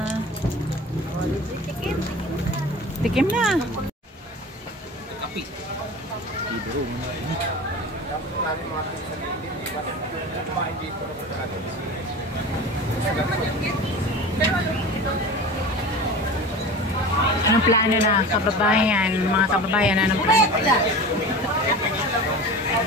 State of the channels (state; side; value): normal; both; correlation 0.34